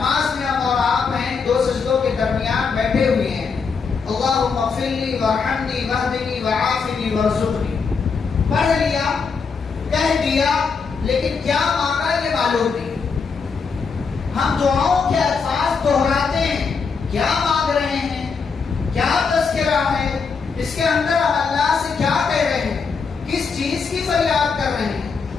میں ہم اور آپ ہیں، دو سجدوں کے درمیان بیٹھے ہوئے ہیں، اللہم اغفر لی وارحمنی واہدنی وعافنی وارزقنی، پڑھ لیا، کہہ دیا، لیکن کیا مانگا یہ معلوم نہیں. ہم دعاؤں کے الفاظ دہراتے ہیں، کیا مانگ رہے ہیں، کیا تذکرہ ہے، اس کے اندر ہم اللہ سے کیا کہہ رہے ہیں، کس چیز کی فریاد کر رہے ہیں،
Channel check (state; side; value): quieter; right; 5.3 dB